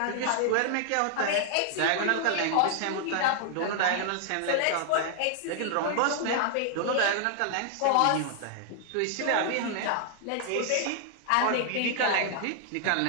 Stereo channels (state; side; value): different; both; correlation 0.00